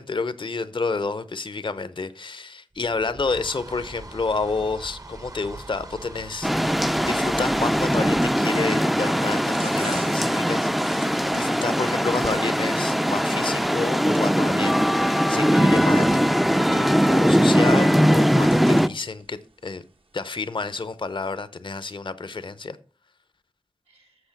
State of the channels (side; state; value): both; normal; correlation 0.90